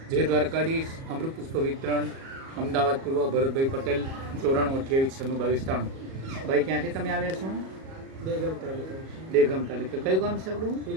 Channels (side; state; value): left; late; 37 ms